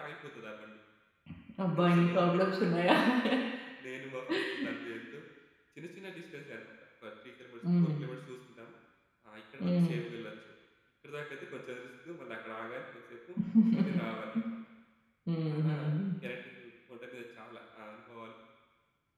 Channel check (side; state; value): both; identical; correlation 1.00